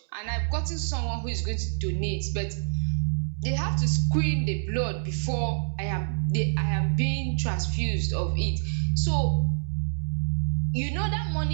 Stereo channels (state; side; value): silent; left; 60 dB below the other